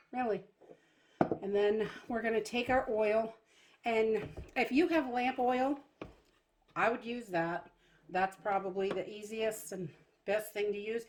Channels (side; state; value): both; identical; correlation 1.00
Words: really. And then we're going to take our oil, and if you have lamp oil, I would use that. That's probably the easiest and best thing to use.